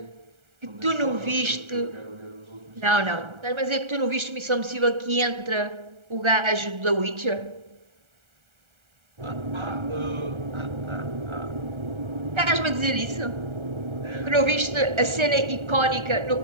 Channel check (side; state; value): left; late; 1.3 ms